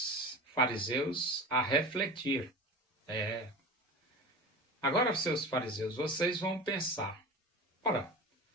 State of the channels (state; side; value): normal; both; correlation 0.32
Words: fariseus a refletir. Agora, seus fariseus, vocês vão pensar: ora,